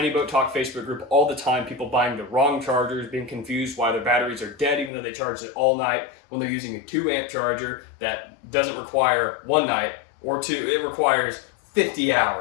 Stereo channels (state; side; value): drops out; right; at 4.9 s